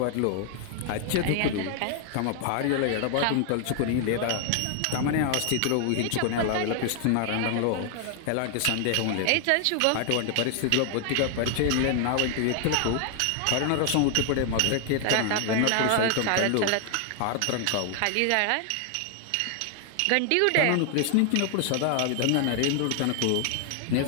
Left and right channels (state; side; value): different; both; correlation 0.00